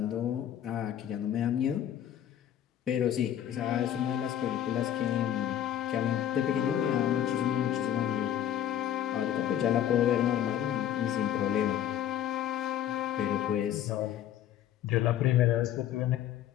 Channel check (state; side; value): quieter; right; 10.9 dB